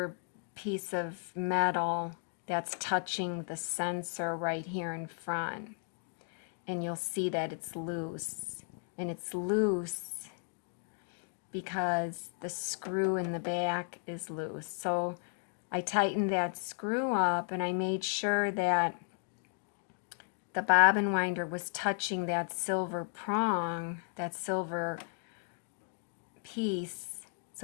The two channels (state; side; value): silent; right; 55 dB below the other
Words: piece of metal that's touching the sensor right here in front. And you'll see that it's loose. And it's loose because the screw in the back is loose. So I tightened that screw up, and I made sure that the bobbin winder was touching that silver prong, that silver piece,